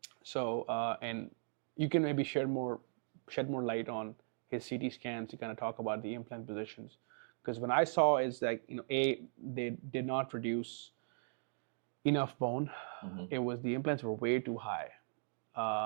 So, and you can maybe shed more light on his CT scans to kind of talk about the implant positions. Because when I saw is that, they did not produce enough bone. It was, the implants were way too high.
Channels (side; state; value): left; silent; digital silence